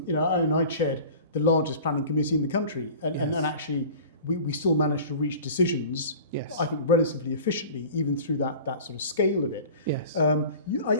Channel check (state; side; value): inverted; both; correlation -0.40